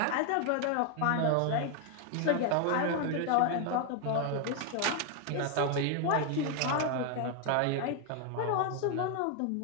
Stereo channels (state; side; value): different; both; correlation 0.01